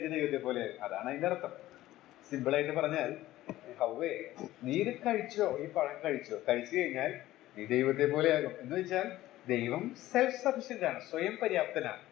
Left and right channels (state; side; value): quieter; right; 15.5 dB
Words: ദൈവത്തെ പോലെ, അതാണ് അതിന്റെ അർത്ഥം. സിമ്പിളായിട്ട് പറഞ്ഞാൽ, ഹൗവേ നീ ഇത് കഴിച്ചോ, ഈ പഴം കഴിച്ചു കഴിഞ്ഞാൽ നീ ദൈവത്തെ പോലെയാകും എന്ന് വെച്ചാൽ ദൈവം സെൽഫ് സഫിഷ്യന്റ് ആണ്, സ്വയം പര്യാപ്തനാണ്.